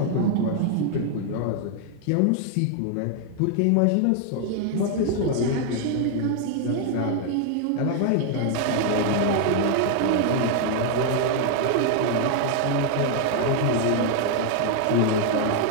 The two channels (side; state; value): both; different; correlation 0.00